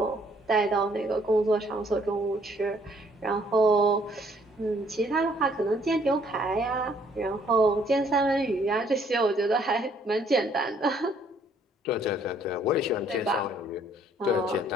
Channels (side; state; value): both; normal; correlation 0.64